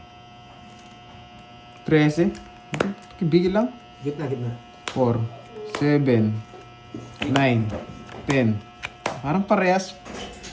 13. Bigil lang. Gitna, gitna. 4, 7, 9, 10. Parang parehas.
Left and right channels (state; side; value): identical; both; correlation 1.00